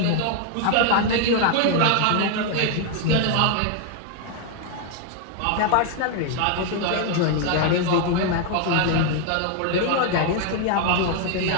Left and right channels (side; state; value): both; different; correlation 0.00